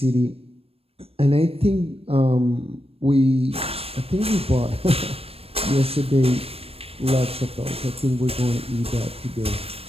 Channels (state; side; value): late; left; 0.28 ms